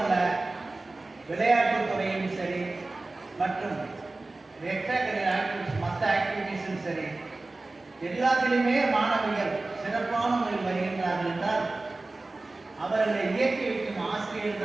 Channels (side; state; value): left; quieter; 3.2 dB